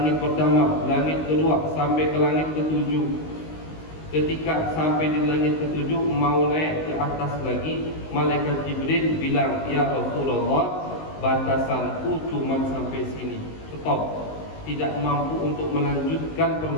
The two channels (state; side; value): late; right; 19 ms